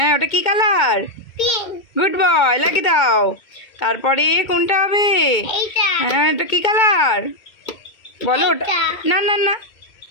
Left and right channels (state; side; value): late; right; 2.1 ms